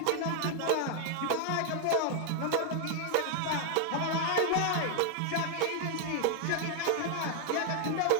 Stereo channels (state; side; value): different; both; correlation 0.00